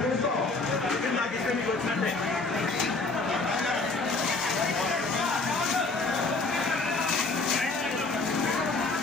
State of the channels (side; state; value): right; quieter; 3.6 dB